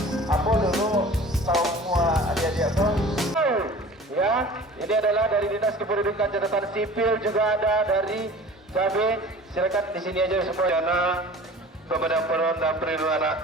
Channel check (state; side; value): normal; both; correlation 0.43